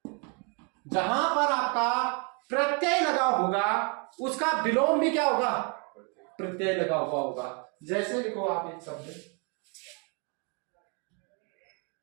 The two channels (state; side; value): quieter; left; 35.1 dB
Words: जहां पर आपका प्रत्यय लगा होगा उसका विलोम भी क्या होगा? प्रत्यय लगा हुआ होगा। जैसे लिखो आप एक शब्द,